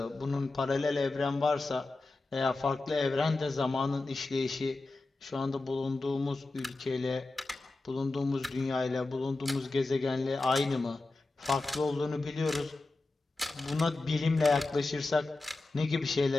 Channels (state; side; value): quieter; right; 3.2 dB